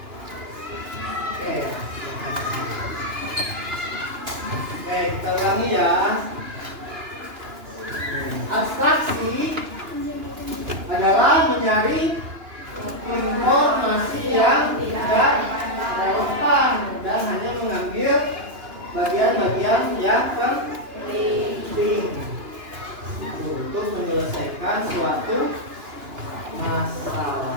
Oke, kita ulangi ya. Abstraksi adalah mencari informasi yang tidak relevan dan hanya mengambil bagian-bagian yang penting untuk menyelesaikan suatu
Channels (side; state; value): left; late; 2.9 ms